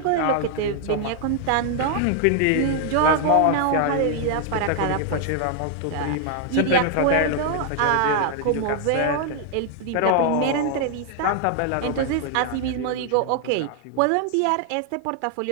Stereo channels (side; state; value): both; different; correlation 0.00